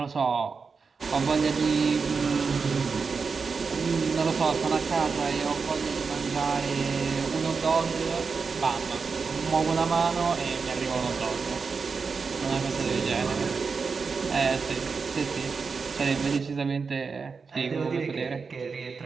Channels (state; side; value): quieter; left; 5.1 dB